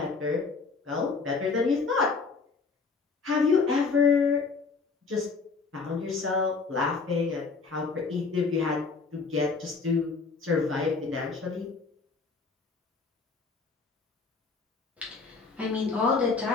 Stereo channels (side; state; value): right; quieter; 4.6 dB